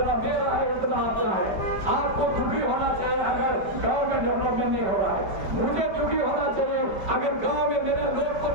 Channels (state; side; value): late; left; 4.7 ms